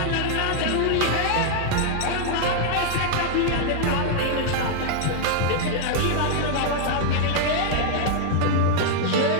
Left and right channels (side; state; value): both; different; correlation 0.00